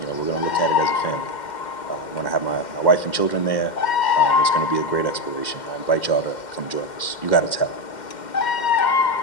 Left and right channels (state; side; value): late; right; 2.1 ms